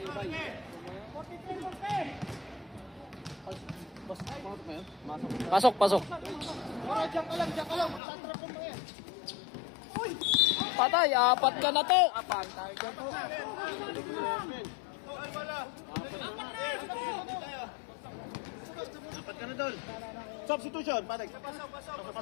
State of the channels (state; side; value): drops out; right; at 8.0 s